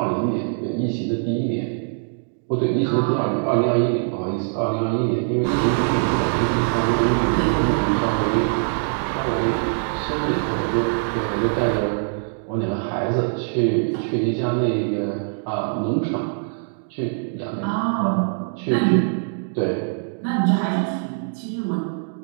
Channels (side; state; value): left; silent; 64 dB below the other